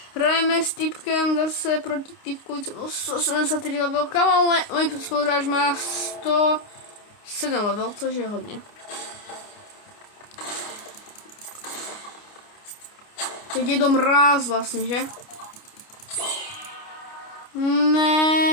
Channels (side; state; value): right; late; 29 ms